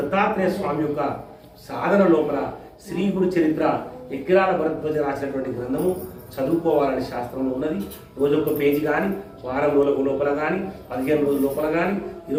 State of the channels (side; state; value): both; identical; correlation 1.00